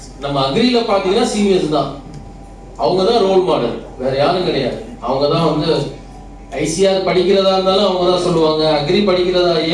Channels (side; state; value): both; identical; correlation 1.00